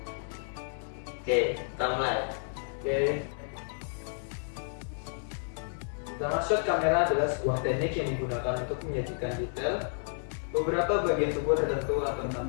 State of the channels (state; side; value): silent; right; 57 dB below the other